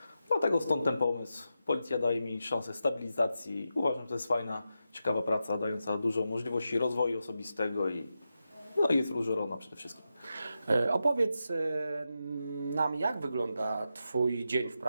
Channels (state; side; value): inverted; both; correlation -0.88